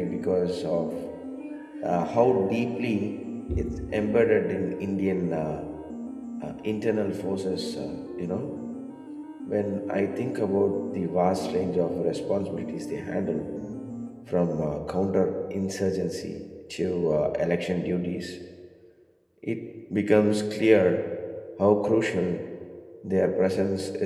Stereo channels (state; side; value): identical; both; correlation 1.00